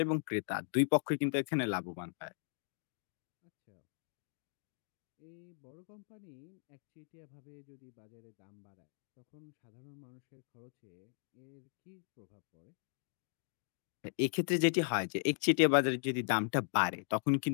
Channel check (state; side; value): silent; right; digital silence